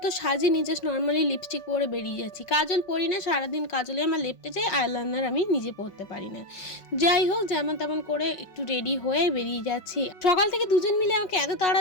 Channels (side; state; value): right; late; 5.3 ms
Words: তো সাজিনি, জাস্ট নর্মালি লিপস্টিক পরে বেরিয়ে যাচ্ছি। কাজল পরি না, সারাদিন কাজলে আমার লেপটে যায়, আইলাইনার আমি নিজে পরতে পারি না। যাই হোক, যেমন তেমন করে একটু রেডি হয়ে বেরিয়ে যাচ্ছি। সকাল থেকে দুজন মিলে আমাকে এত তাড়া